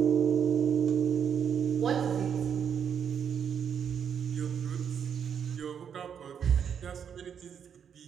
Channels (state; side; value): quieter; left; 7.8 dB